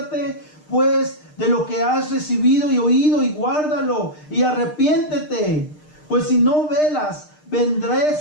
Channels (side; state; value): right; late; 6.6 ms